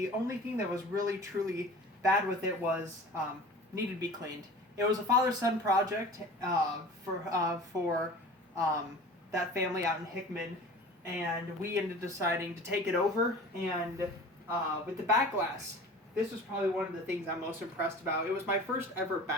only thing that was really truly bad with it was needed to be cleaned. It was a father-son project for that family out in Hickman, and we ended up deciding to take it over, and with the back glass, this was probably one of the things I'm most impressed about. It was my first ever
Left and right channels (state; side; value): normal; both; correlation 0.40